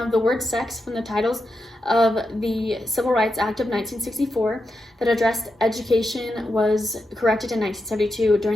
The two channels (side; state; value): both; normal; correlation 0.87